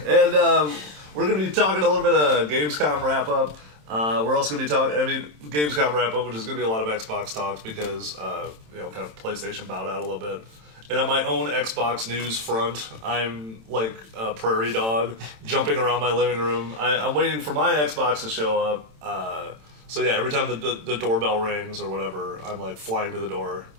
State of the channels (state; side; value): late; left; 27 ms